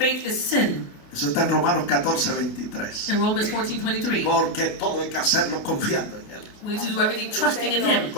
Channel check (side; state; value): right; late; 28 ms